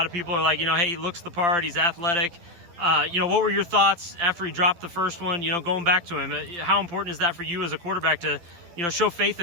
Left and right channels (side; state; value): left; late; 12 ms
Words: of people are like, hey, he looks the part, he's athletic. What were your thoughts after he dropped the first one, going back to him? How important is that for you as a quarterback to, show faith